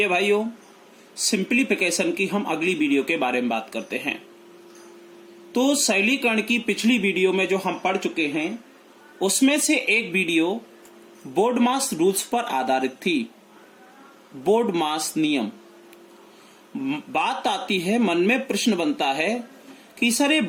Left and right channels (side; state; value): both; identical; correlation 1.00